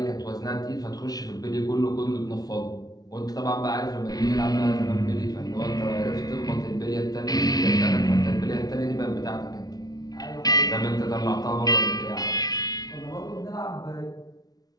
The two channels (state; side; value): late; right; 0.18 ms